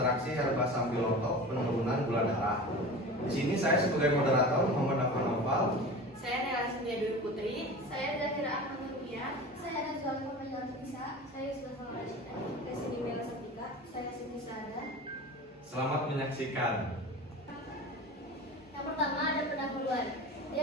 herba sambiloto penurunan gula darah. Di sini saya sebagai moderator Muhammad Afan Noval. Saya Nela Sindia Dwi Putri. Saya Zahira Ahmad Nurbiah. Saya Nazwa Muhammad Bisa. Saya Yusuf Rashida. Saya Siti Mela Satika. Saya Siti Sada. Selamat menyaksikan. Yang pertama ada pendahuluan.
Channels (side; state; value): both; normal; correlation 0.34